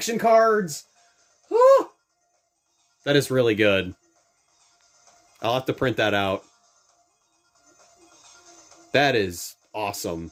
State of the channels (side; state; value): both; identical; correlation 1.00